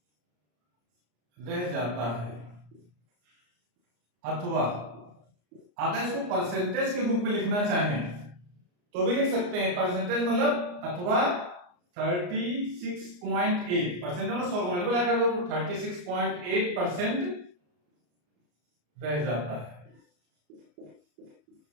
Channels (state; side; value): late; left; 34 ms